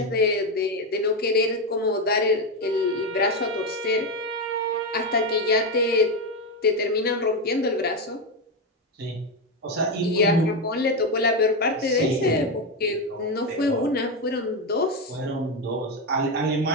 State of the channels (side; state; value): both; normal; correlation 0.10